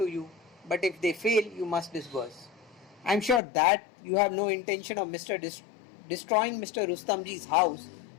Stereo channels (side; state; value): right; drops out; at 3.4 s